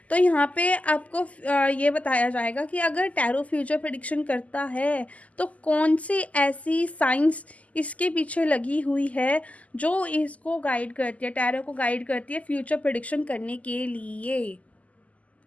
तो यहाँ पे आपको ये बताया जाएगा कि अगर टैरो फ्यूचर प्रेडिक्शन करता है तो कौन सी ऐसी साइंस इसके पीछे लगी हुई है जो इसको गाइड करती है, टैरो को गाइड करती है फ्यूचर प्रेडिक्शन करने के लिए।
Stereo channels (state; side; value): late; right; 0.071 ms